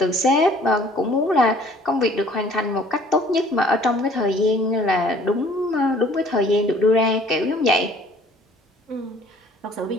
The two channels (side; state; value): both; normal; correlation 0.54